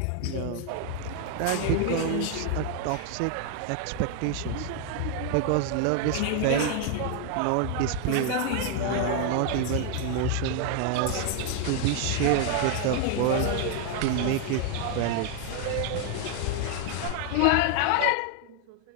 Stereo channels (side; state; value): both; different; correlation 0.00